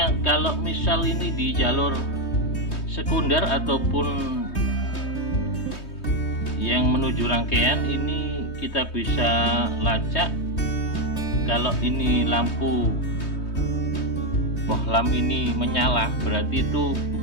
kalau misal ini di jalur sekunder ataupun yang menuju rangkaian, ini kita bisa lacak kalau ini lampu bohlam ini menyala, berarti itu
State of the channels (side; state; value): right; late; 3.2 ms